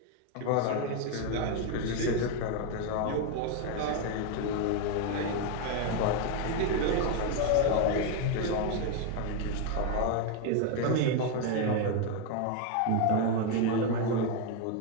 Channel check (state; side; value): different; both; correlation 0.01